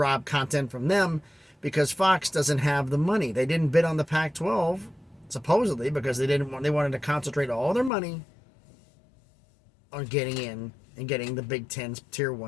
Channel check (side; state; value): right; drops out; at 7.9 s